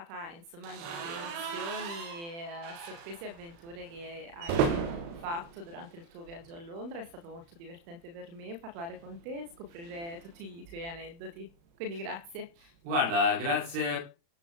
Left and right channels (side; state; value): left; late; 35 ms